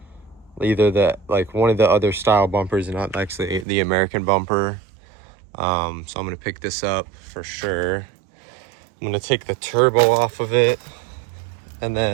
either one of the other style bumpers and not actually the American bumper. So I'm gonna pick this up for sure. I'm gonna take the turbo off of it, and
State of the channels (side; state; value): left; drops out; at 3.7 s